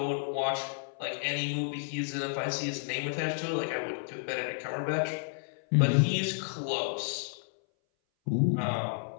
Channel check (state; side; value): silent; right; 57 dB below the other